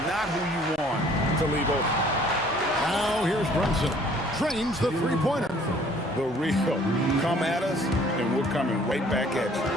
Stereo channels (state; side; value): normal; both; correlation 0.57